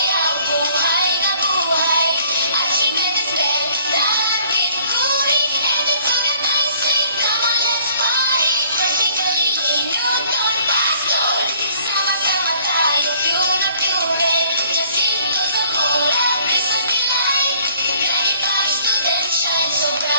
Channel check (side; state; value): both; inverted; correlation -0.58